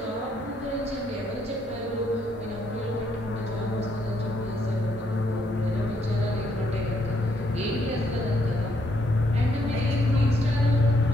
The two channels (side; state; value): both; normal; correlation 0.73